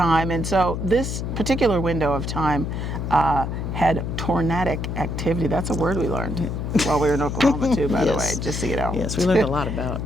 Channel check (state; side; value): noise; left; hum, 3 dB below the sound